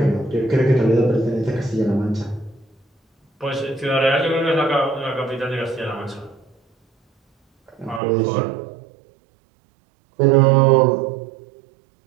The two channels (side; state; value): left; drops out; at 8.0 s